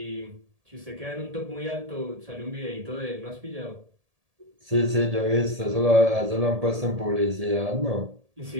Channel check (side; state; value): left; late; 1.7 ms